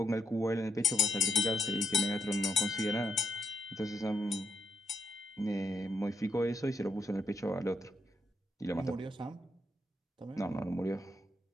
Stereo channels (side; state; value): both; normal; correlation 0.78